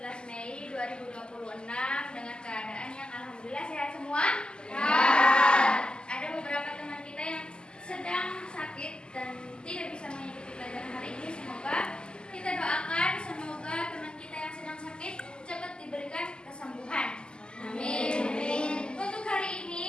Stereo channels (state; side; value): late; right; 0.048 ms